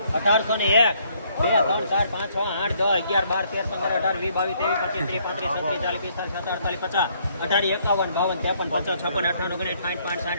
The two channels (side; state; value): both; inverted; correlation -0.67